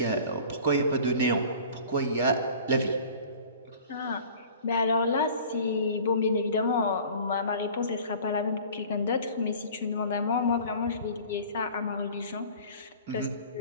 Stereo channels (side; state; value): both; inverted; correlation -0.45